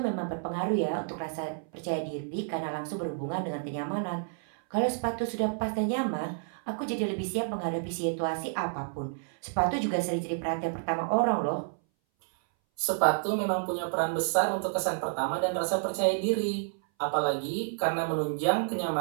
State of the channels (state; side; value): silent; left; 58 dB below the other